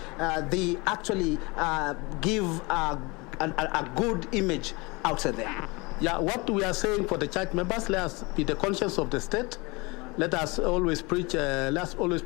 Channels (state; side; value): quieter; right; 26.1 dB